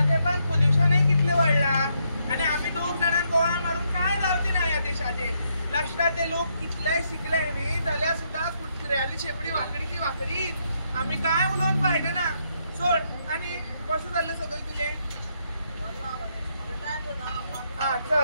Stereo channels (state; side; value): inverted; both; correlation -0.76